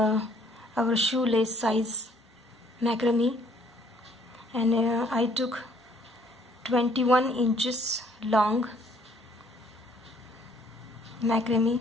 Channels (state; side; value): normal; both; correlation 0.63